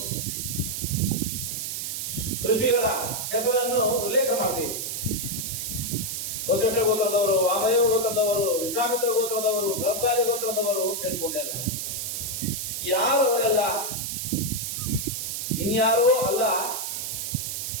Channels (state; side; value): noise; right; hiss, 3 dB below the sound